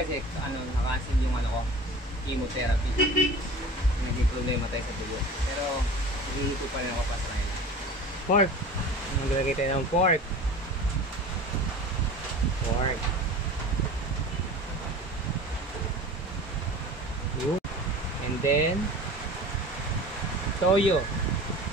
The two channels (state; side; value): normal; both; correlation 0.38